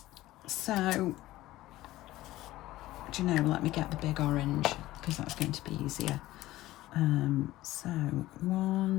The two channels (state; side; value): quieter; right; 16.5 dB